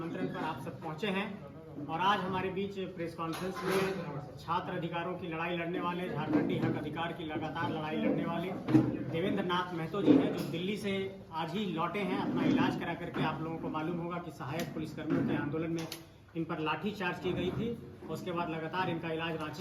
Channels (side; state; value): both; identical; correlation 1.00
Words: पर आप सब पहुंचे हैं और आज हमारे बीच प्रेस कॉन्फ्रेंस में छात्र अधिकारों की लड़ाई लड़ने वाले, झारखंडी हक अधिकार की लगातार लड़ाई लड़ने वाले देवेंद्र नाथ महतो जी हैं, जो दिल्ली से आज ही लौटे हैं अपना इलाज करा करके। आप लोगों को मालूम होगा कि सहायक पुलिसकर्मियों के आंदोलन में इन पर लाठीचार्ज की गई थी। उसके बाद लगातार इनका इलाज